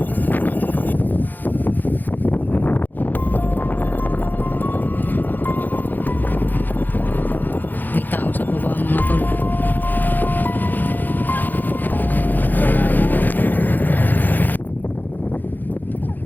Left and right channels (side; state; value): right; late; 0.086 ms